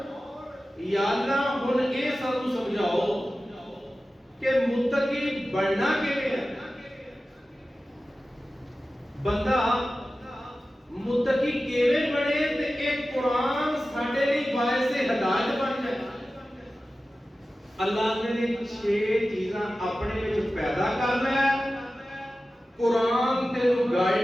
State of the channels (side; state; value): both; normal; correlation 0.95